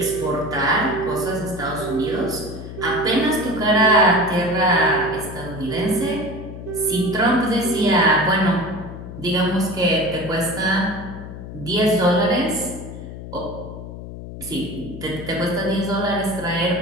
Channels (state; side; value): noise; left; hum, 11 dB below the sound